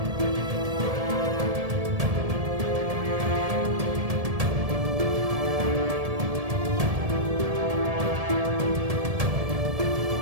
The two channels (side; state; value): left; late; 1.7 ms